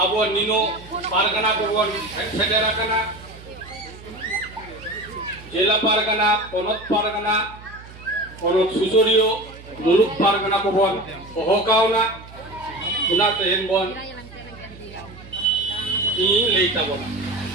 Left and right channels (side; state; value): right; noise; hum, 18 dB below the sound